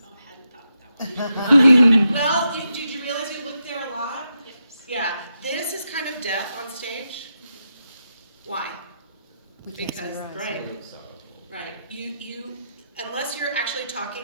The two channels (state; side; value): inverted; both; correlation -0.85